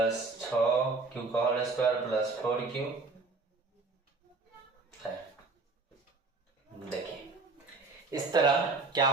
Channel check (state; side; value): quieter; left; 3.8 dB